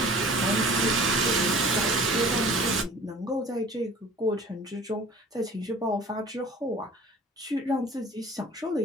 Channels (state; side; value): normal; both; correlation 0.45